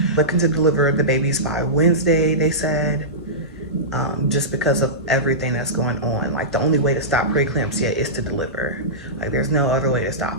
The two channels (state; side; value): normal; both; correlation -0.17